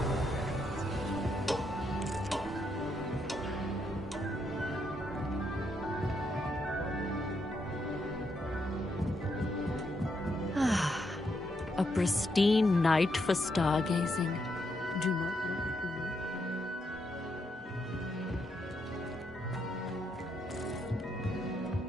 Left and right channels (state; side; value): normal; both; correlation 0.78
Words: A pristine night for stargazing. Do not look at me.